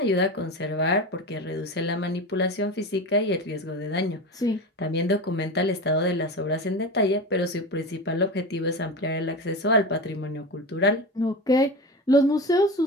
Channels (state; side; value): normal; both; correlation 0.25